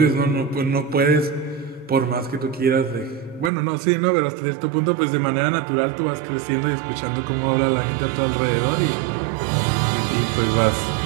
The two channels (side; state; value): left; drops out; at 3.5 s